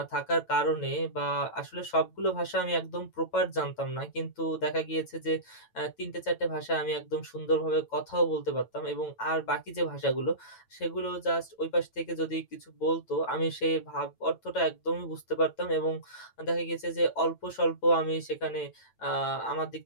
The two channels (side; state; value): right; late; 9.0 ms